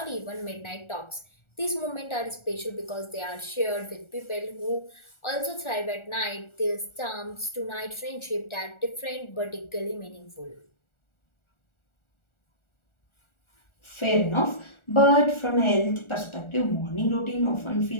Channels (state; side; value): late; right; 1.4 ms